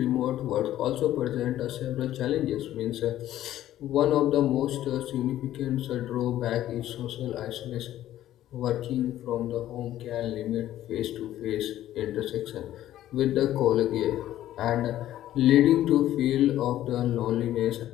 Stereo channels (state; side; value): quieter; right; 13.1 dB